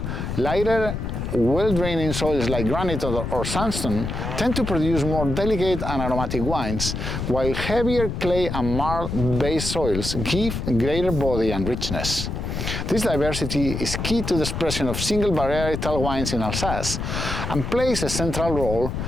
lighter, well-draining soils like granite or sandstone tend to produce more delicate and aromatic wines, while heavier clay and marl-based soils give greater body and richness. This diversity is key to the expression of single varietal wines in Alsace and plays a central role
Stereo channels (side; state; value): left; noise; rumble, 4 dB below the sound